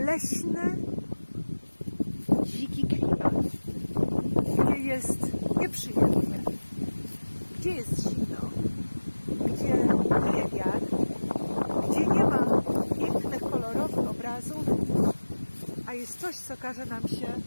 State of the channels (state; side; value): inverted; both; correlation -1.00